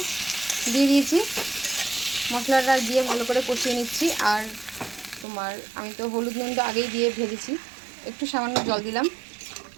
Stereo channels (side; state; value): left; drops out; at 5.2 s